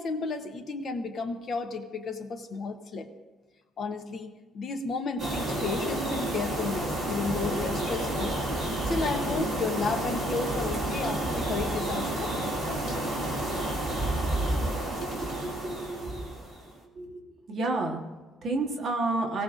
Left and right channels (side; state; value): both; normal; correlation 0.65